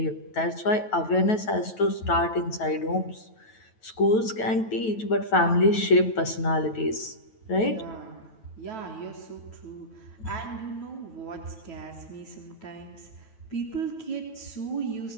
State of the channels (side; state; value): right; late; 9.2 ms